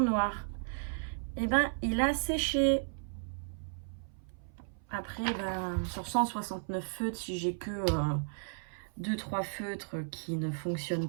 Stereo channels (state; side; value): silent; left; 55 dB below the other